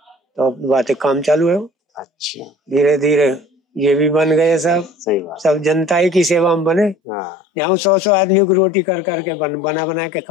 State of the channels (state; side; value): drops out; right; at 7.0 s